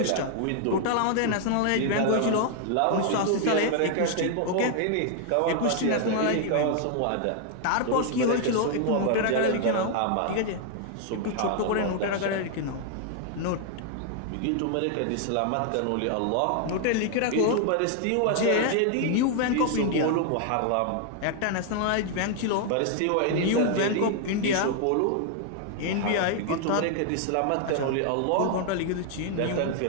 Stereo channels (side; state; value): both; different; correlation 0.00